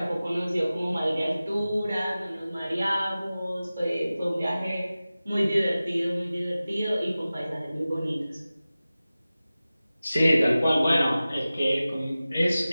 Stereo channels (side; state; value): both; inverted; correlation -0.96